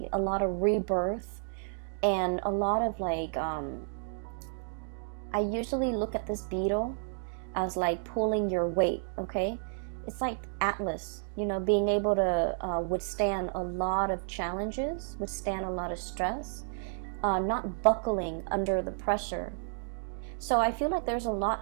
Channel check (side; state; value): left; silent; digital silence